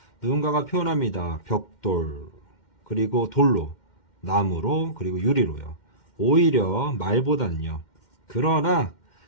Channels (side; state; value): right; late; 2.1 ms